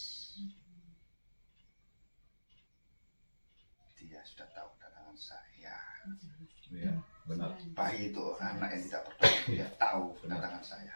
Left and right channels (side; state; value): both; inverted; correlation -1.00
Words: Dia sudah tahu kedatangan saya. Iya, benar. Bayi itu anak yang tidak berdosa. Dia tahu kedatangan